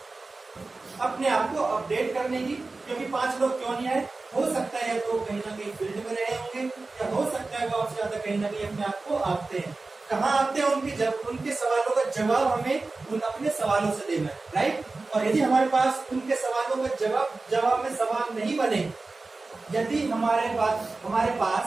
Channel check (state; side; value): quieter; left; 3.6 dB